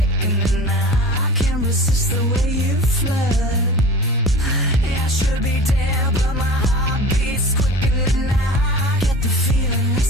I can't resist the way you flirt. I should be dead, but my heart beats quickening. I get the feeling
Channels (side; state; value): both; normal; correlation 0.37